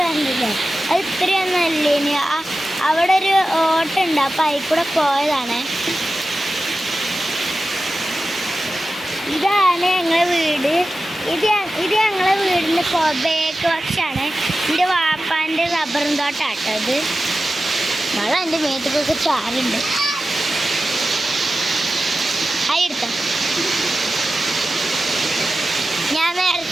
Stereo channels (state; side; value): normal; both; correlation 0.94